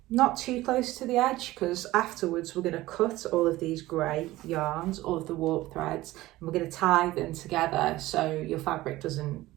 not too close to the edge, because afterwards we're going to cut all of these grey yarns, all of the warp threads, and we're going to tie them together so your fabric doesn't,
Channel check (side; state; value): left; quieter; 17.4 dB